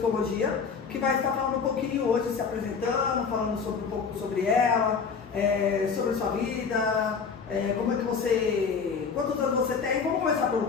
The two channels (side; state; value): right; quieter; 5.7 dB